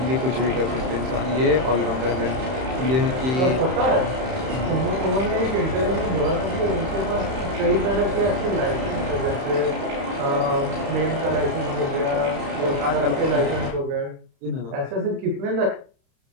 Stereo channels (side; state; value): left; late; 31 ms